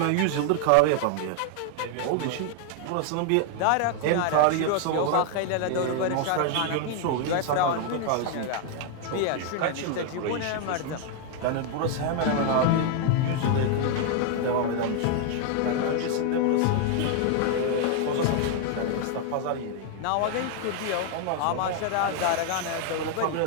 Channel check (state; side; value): different; both; correlation 0.00